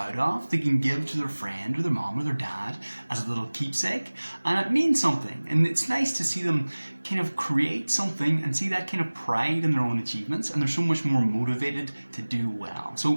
of, they can give to their friend or their mom or their dad as a little keepsake, and it means something. And it's nice to see them kind of create something and see that kind of pride in their own achievements, and they're so much more motivated to do well.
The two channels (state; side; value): inverted; both; correlation -1.00